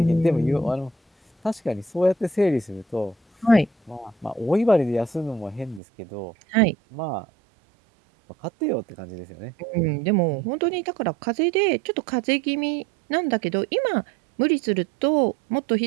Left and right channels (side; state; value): left; drops out; at 5.8 s